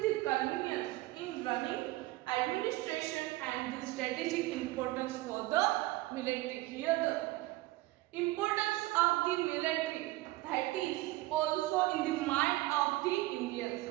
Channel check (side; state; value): left; quieter; 18.9 dB